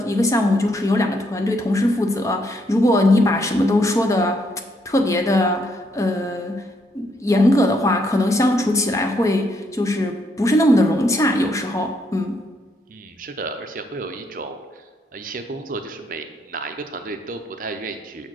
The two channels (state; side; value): normal; both; correlation 0.74